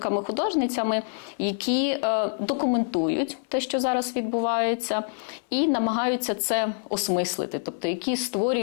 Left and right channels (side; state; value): right; silent; 61 dB below the other